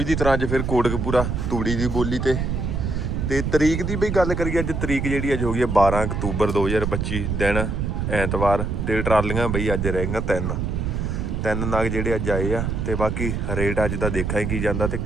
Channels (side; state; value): right; noise; rumble, 1 dB below the sound